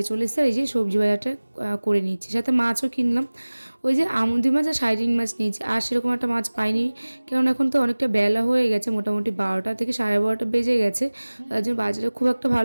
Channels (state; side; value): inverted; both; correlation -1.00